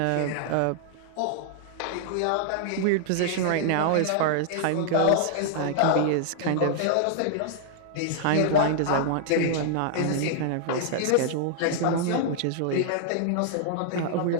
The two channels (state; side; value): different; both; correlation -0.01